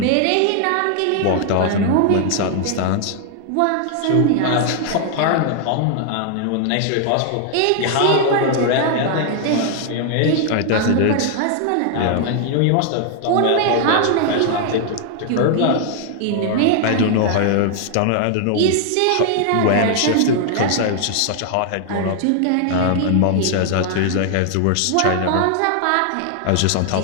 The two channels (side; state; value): both; different; correlation 0.00